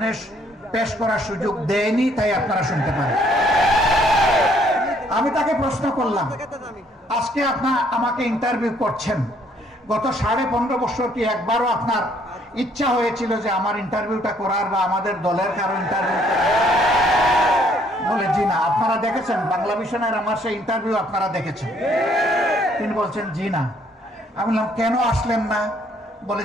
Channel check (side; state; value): both; normal; correlation 0.65